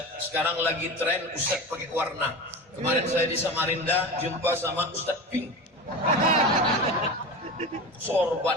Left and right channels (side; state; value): both; normal; correlation 0.28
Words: Sekarang lagi tren Ustadz pakai warna. Kemarin saya di Samarinda jumpa sama Ustadz Pink.